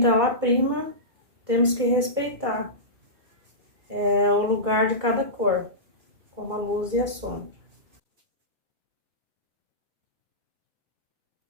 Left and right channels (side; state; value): left; late; 2.4 ms